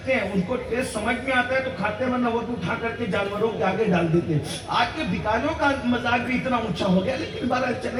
ہیں, ان کو ٹیسٹ سمجھ میں آتا ہے تو کھاتے ہیں, ورنہ وہ اٹھا کر کے جانوروں کے آگے ڈال دیتے ہیں. آج کے بھکاریوں کا مزاج بھی اتنا اونچا ہو گیا. لیکن بہرحال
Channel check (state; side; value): identical; both; correlation 1.00